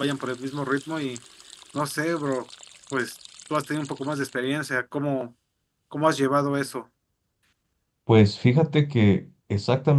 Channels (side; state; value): both; identical; correlation 1.00